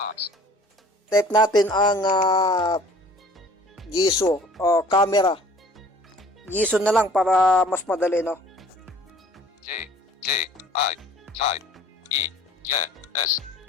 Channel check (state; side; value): normal; both; correlation 0.50